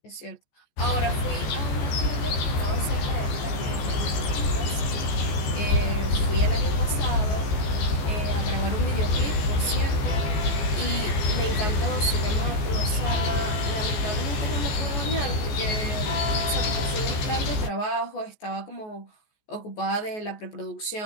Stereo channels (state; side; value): late; right; 14 ms